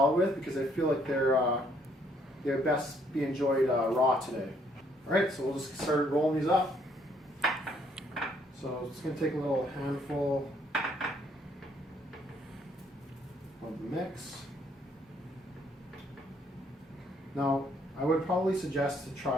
with because I feel like they're best be enjoyed raw today. All right, so we'll just start rolling these up. So it's going to take a little handful of the mix. Now, I would probably suggest to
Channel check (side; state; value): both; normal; correlation 0.67